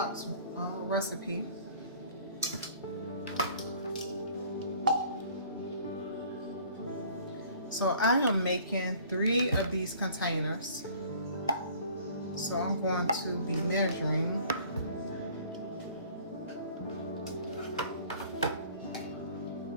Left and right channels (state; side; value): inverted; both; correlation -0.52